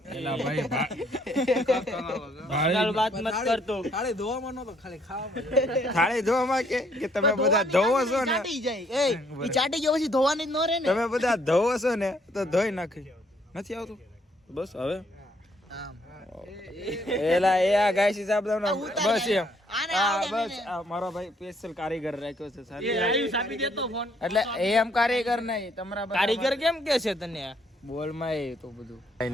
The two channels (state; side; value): normal; both; correlation 0.67